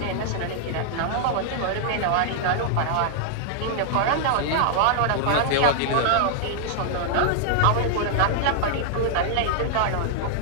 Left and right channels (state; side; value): different; both; correlation -0.01